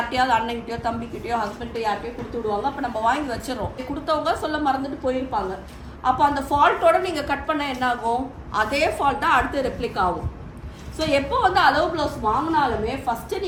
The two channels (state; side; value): identical; both; correlation 1.00